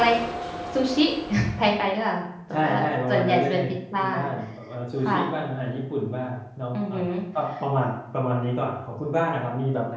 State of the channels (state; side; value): identical; both; correlation 1.00